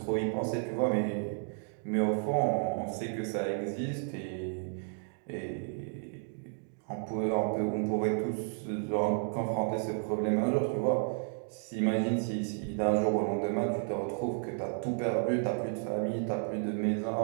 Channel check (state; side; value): silent; left; 56 dB below the other